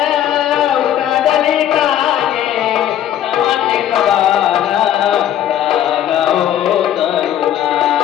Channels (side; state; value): right; quieter; 11.1 dB